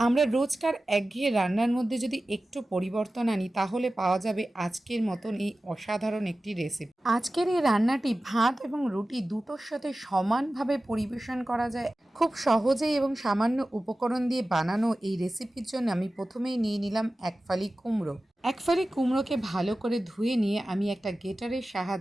আমরা রোজকার একঘেয়ে রান্নার মধ্যে যদি একটু পরিবর্তন আনি তাহলে পাওয়া যাবে আজকের মতন এই অসাধারণ একটি রেসিপি। আজকের এই রান্নাটি ভাত এবং রুটি দুটোর সাথে সমানভাবে পরিবেশন করা যায়। খুব সহজেই এবং সামান্য উপকরণ দিয়ে বানানো এই রেসিপির জন্য আমি প্রথমেই নিয়ে নিলাম এক ফালি কুমড়ো। এক ফালি কুমড়োকে ভালো করে ধুয়ে নিয়ে আমি একটা গ্রেটারের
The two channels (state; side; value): normal; both; correlation 0.95